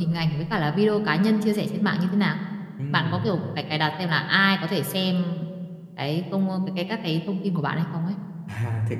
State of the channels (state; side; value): identical; both; correlation 1.00